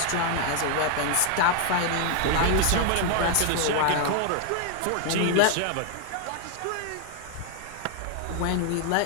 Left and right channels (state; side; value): different; both; correlation 0.00